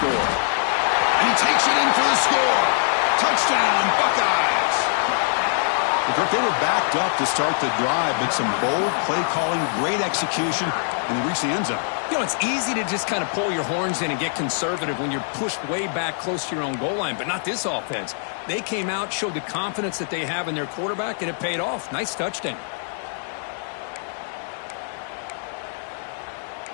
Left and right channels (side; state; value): right; silent; digital silence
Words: And he takes it in for the score. Touchdown, Buckeyes. They were backed up to start the drive, but some bold play calling, great execution, and they reached the end zone. You know, it's easy to just kind of pull your horns in and get conservative when you're pushed way back close to your own goal line, but not this offense. They came out, showed the confidence that they have in their quarterback, and it paid off. Nice touchdown.